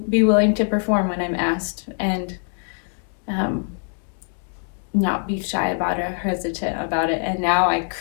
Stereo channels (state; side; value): silent; right; 59 dB below the other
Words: be willing to perform when I'm asked, and not be shy about it or hesitant about it. And now I